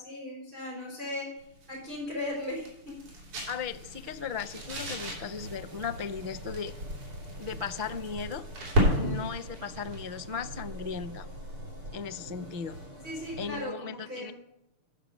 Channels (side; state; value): left; late; 6.7 ms